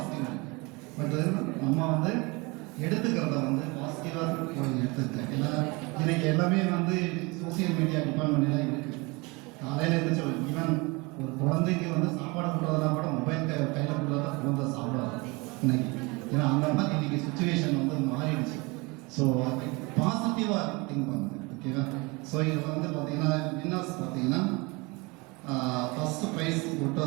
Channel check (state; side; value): quieter; left; 26.3 dB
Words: இருக்குது. பட் நம்ம வந்து எடுத்துக்கிறத வந்து பாசிட்டிவாக எடுத்துக்கிட்டேன். ஏன்னா இன்னைக்கு எல்லாமே வந்து சோசியல் மீடியா டிபார்ட்மெண்ட்லாம் இருக்குது. காலையில் இருந்துச்சு ஈவன் ஒரு குழந்தைக்கு வந்து சாப்பாடு கொடுறதுனா கூட மொபைல் கையில் கொடுத்தா குழந்தை சாப்பிடாது இன்னைக்கு. ஏன்னா அந்த மாதிரி இன்னைக்கு சுச்சுவேஷன் வந்து மாறிடுச்சு. ஸோ பாசிட்டிவாக திங்க் பண்ணுங்க ஓகேவா? ஸோ இதில் வந்து பார்த்தீங்கன்னா வின்னர்ஸ் பார்த்தீங்கன்னா ஃபர்ஸ்ட் ப்ரைஸ் போட்டு